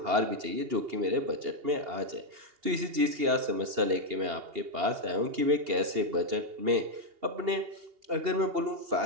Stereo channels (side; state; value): left; late; 2.8 ms